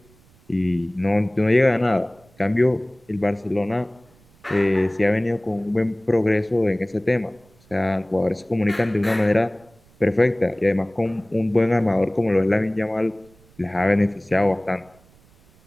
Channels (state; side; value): noise; right; rumble, 30 dB below the sound